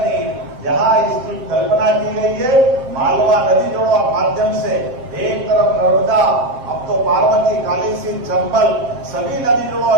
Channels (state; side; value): late; left; 7.3 ms